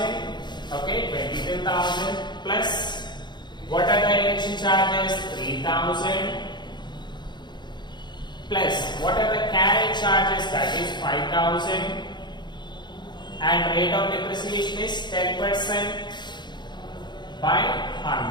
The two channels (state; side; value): late; right; 0.21 ms